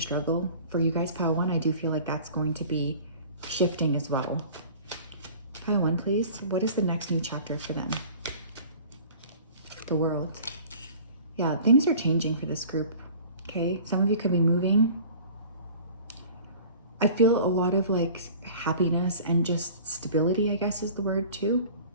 for you guys, pile 1, I do feel like that's going to be shifting as well. Pile 1, please. What is the next new chapter for them? The World. Yeah, things are changing for this group, okay? Some of you could be moving. I feel a lot of happiness and just stability, I guess is the word too.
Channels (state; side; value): inverted; both; correlation -0.44